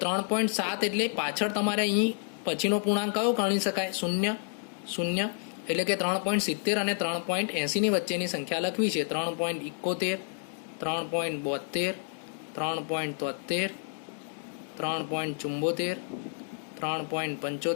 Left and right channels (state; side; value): silent; right; 58 dB below the other